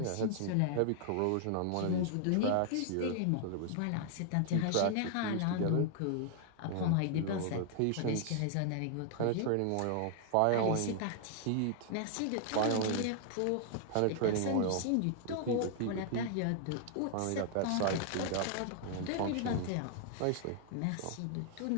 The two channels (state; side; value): different; both; correlation -0.01